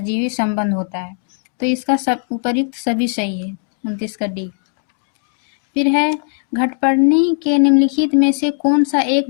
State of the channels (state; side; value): silent; right; 57 dB below the other